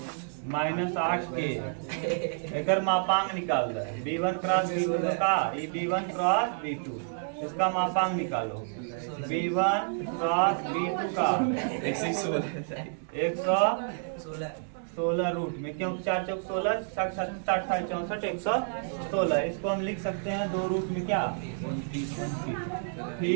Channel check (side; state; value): left; silent; digital silence